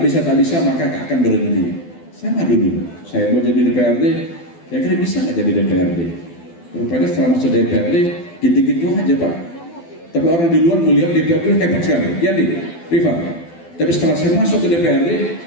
bisa, maka akan berhenti. Sama dulu, saya mau jadi DPRD, ya kira bisa nggak jadi DPRD? Rupanya setelah masuk DPRD, gitu-gitu aja Pak. Tapi orang di luar melihat DPRD hebat sekali. Ya nih, Rifa. Tapi setelah saya masuk ke DPRD,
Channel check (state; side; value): late; right; 12 ms